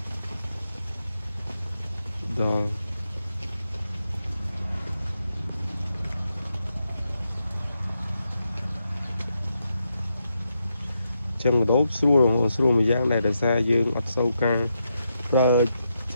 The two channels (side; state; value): both; inverted; correlation -0.83